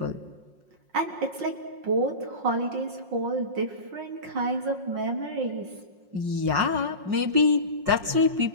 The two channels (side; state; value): left; late; 5.6 ms